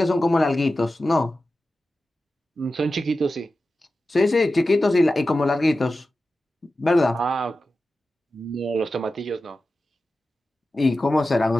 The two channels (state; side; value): normal; both; correlation 0.93